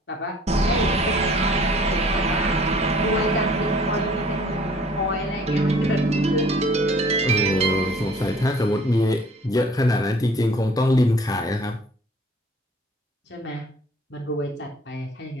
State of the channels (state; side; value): normal; both; correlation 0.54